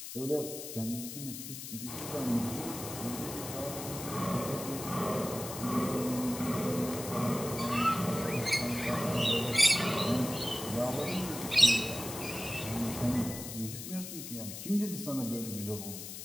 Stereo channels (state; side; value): noise; left; hiss, 9 dB below the sound